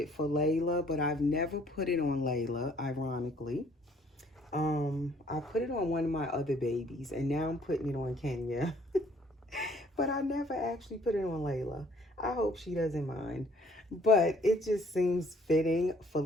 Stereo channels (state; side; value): normal; both; correlation 0.60